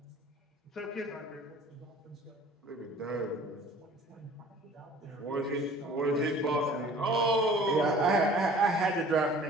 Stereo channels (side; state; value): both; normal; correlation 0.49